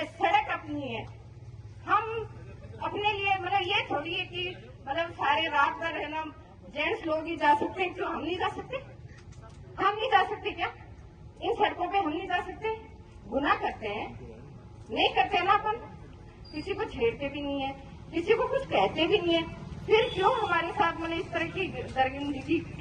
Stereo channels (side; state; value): both; identical; correlation 1.00